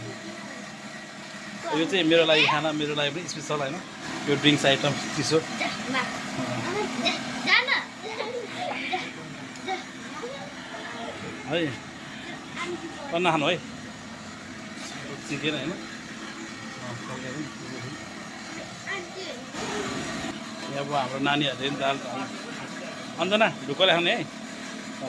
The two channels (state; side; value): identical; both; correlation 1.00